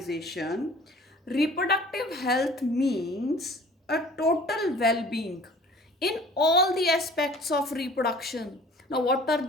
reproductive health means a total well-being in all the aspects of reproduction. Now, what are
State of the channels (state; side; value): normal; both; correlation 0.48